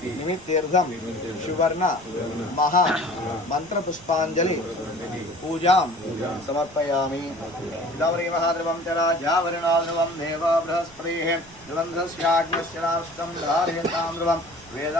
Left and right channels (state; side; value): noise; right; rumble, 23 dB below the sound